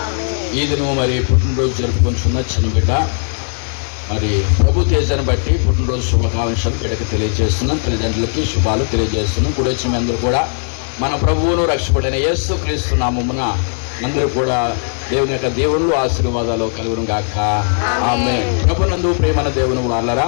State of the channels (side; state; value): right; silent; digital silence